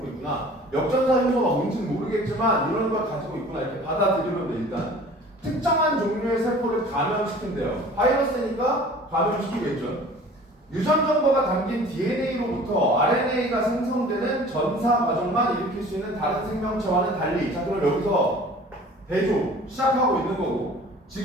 있구나. 역전사 요소가 뭔지는 모르겠지만 이런 걸 가지고 있구나 이렇게 받아들이면 돼. 일단 특정한 종류의 세포를 감염시킨대요. 바이러스니까 감염시키겠죠. 유전 정보가 담긴 DNA로부터 RNA가 생성되는 전사 과정만 일으킬 수 있는 다른 생명체와는 달리. 자, 그럼 여기서 대조 시작하고 있는 거고,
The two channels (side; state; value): both; normal; correlation 0.46